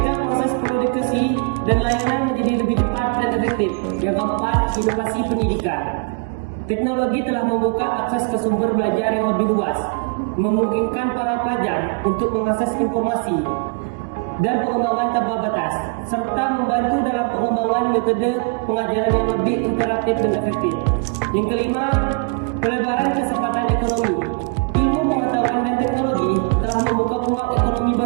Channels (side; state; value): left; quieter; 33.7 dB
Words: proses produksi dan layanan menjadi lebih cepat dan efektif. Yang keempat, inovasi pendidikan. Teknologi telah membuka akses ke sumber belajar yang lebih luas, memungkinkan para pelajar untuk mengakses informasi dan pengembangan tanpa batas, serta membantu dalam pengembangan metode pengajaran yang lebih interaktif dan efektif. Yang kelima, pelebaran kesempatan ekonomi. Ilmu pengetahuan dan teknologi telah membuka peluang ekonomi